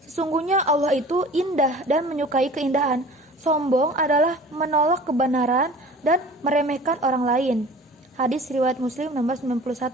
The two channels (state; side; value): normal; both; correlation 0.43